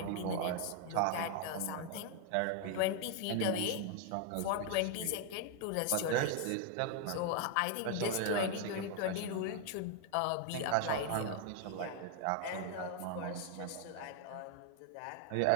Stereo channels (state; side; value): different; both; correlation 0.00